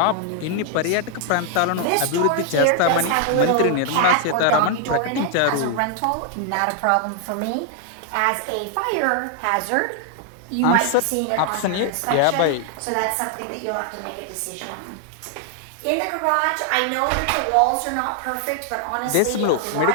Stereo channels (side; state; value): both; different; correlation 0.00